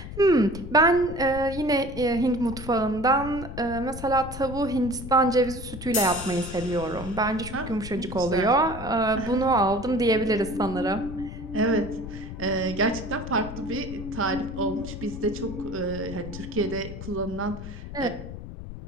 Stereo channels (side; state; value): left; noise; rumble, 10 dB below the sound